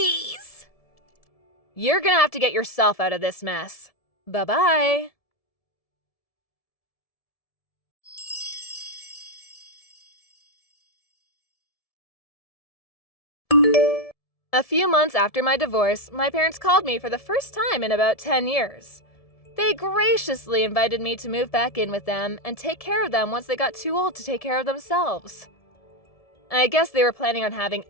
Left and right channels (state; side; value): late; right; 1.7 ms